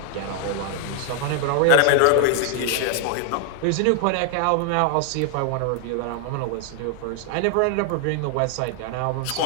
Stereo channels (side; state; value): both; different; correlation 0.00